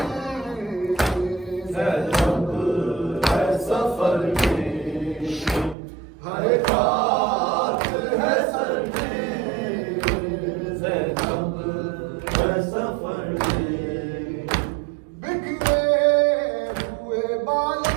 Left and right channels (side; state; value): left; drops out; at 5.8 s